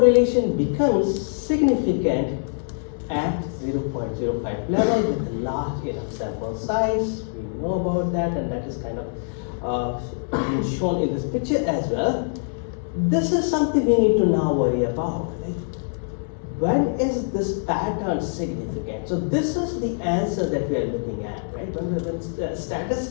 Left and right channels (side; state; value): right; silent; 63 dB below the other